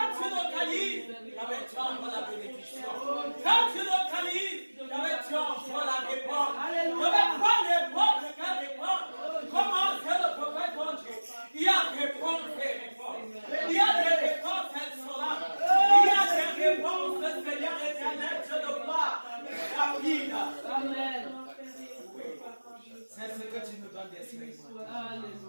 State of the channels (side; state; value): both; inverted; correlation -1.00